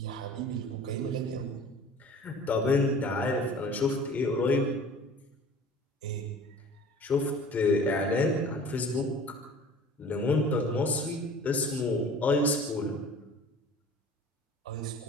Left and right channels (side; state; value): both; normal; correlation 0.45